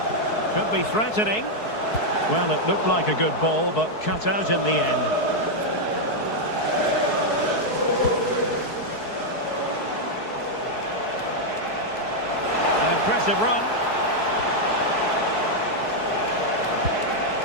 Could be threatening. Well, it looked like a good ball, but cut out in the end. Impressive run.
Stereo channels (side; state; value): right; late; 4.6 ms